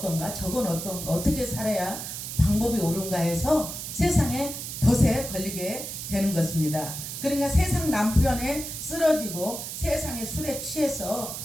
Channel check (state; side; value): noise; right; hiss, 7 dB below the sound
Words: 저건 어떤가 어떻게 살아야 방법이 옳은가 해서 세상에 덫에 걸리게 되는 것입니다. 그러니까 세상 남편에 쓰러지고 세상의 술에 취해서